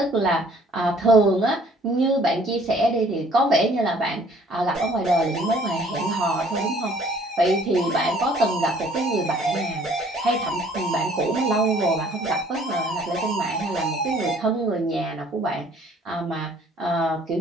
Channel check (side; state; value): both; normal; correlation 0.57